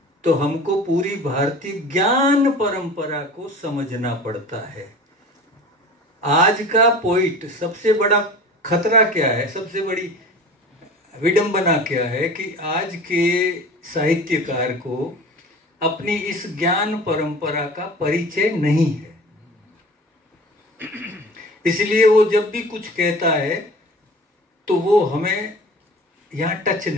तो हमको पूरी भारतीय ज्ञान परंपरा को समझना पड़ता है। आज का पोइट, सबसे बड़ा खतरा क्या है, सबसे बड़ी विडंबना क्या है कि आज के साहित्यकार को अपनी इस ज्ञान परंपरा का परिचय नहीं है। इसलिए वो जब भी कुछ कहता है तो वो हमें यहाँ टच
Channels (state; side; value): normal; both; correlation 0.39